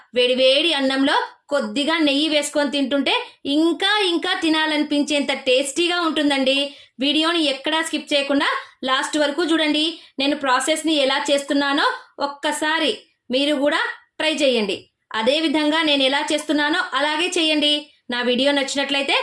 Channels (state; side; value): identical; both; correlation 1.00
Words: వేడివేడి అన్నంలో కొద్దిగా నెయ్యి వేసుకొని తింటుంటే ఇంకా తినాలనిపించేంత టేస్టీగా ఉంటుందండి. వీడియోని ఎక్కడా స్కిప్ చేయకుండా లాస్ట్ వరకు చూడండి. నేను ప్రాసెస్ని ఎలా చేస్తున్నానో ఒక్కసారి మీరు కూడా ట్రై చేయండి. అదే విధంగా నేను ఎలా చేస్తున్నానో అలాగే చేయండి. నా వీడియో నచ్చినట్లయితే